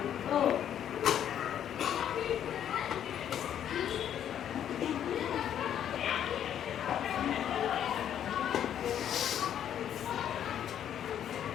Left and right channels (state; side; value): quieter; right; 9.9 dB